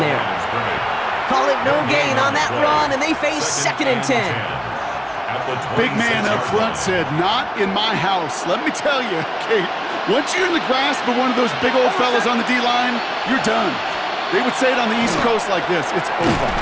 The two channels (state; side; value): identical; both; correlation 1.00